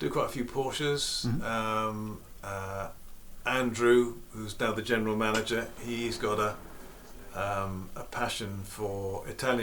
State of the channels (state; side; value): identical; both; correlation 1.00